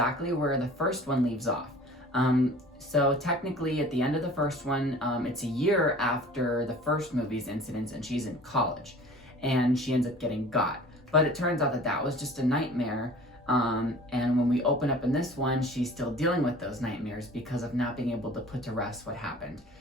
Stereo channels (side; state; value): both; normal; correlation 0.45